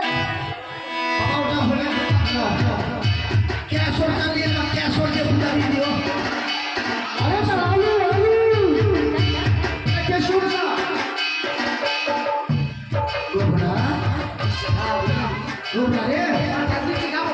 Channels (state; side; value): identical; both; correlation 1.00